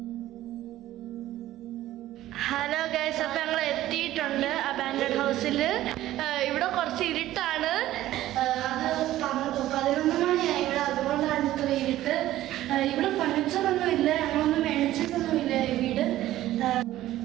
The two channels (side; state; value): left; quieter; 14.5 dB